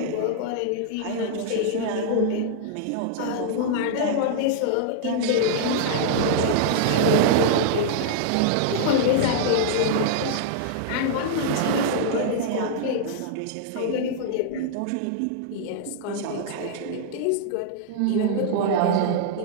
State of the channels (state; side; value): different; both; correlation -0.01